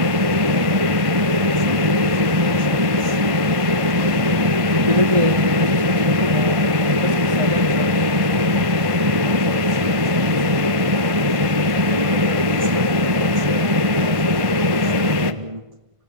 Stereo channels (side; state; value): left; late; 1.5 ms